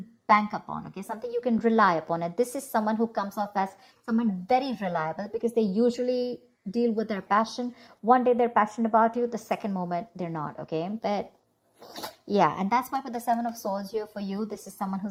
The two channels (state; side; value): identical; both; correlation 1.00